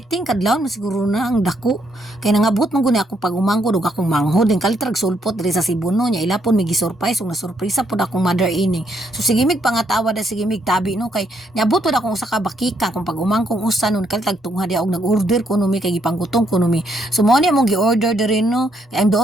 kadlaw na siguro na ang dako. Kaya nangabot man guni akong pag-umangko, dug akong manghod. Din kalitrag sulpot diri sa Cebuno niya. Ilapon may gisurprise, ug nasurpresa pod akong mother ining. So sige mig pangatawa da sige mig tabi no kay niabot pod akong usa ka bakika kung pag-umangkong usa nun kalitag tungha dia og nag-order kuno mi kay gipanggutong kuno mi. So mo ni among gi-order diri no. Kay ang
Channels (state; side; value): normal; both; correlation 0.74